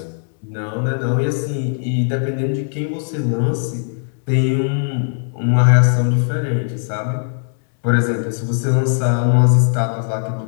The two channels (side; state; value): right; silent; digital silence